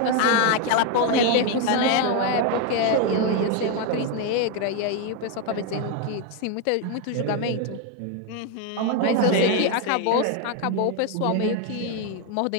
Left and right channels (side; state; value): both; different; correlation 0.01